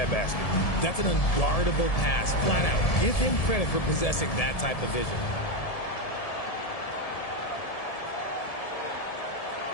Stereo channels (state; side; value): late; right; 1.7 ms